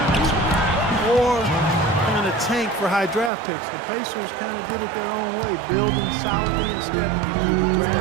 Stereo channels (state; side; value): drops out; left; at 3.3 s